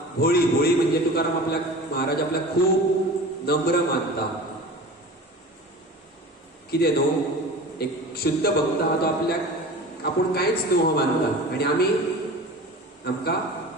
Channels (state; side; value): normal; both; correlation 0.36